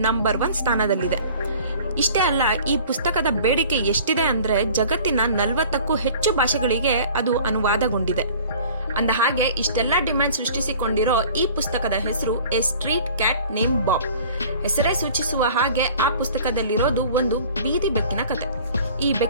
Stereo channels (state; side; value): inverted; both; correlation -0.47